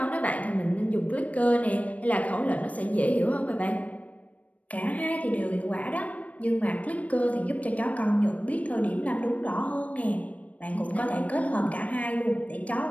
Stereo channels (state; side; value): late; right; 0.068 ms